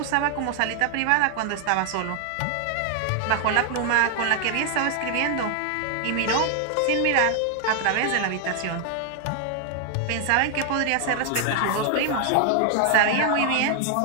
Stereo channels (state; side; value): different; both; correlation 0.00